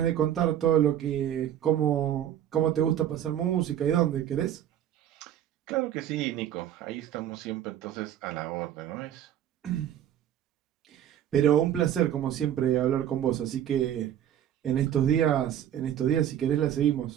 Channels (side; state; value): left; quieter; 10.7 dB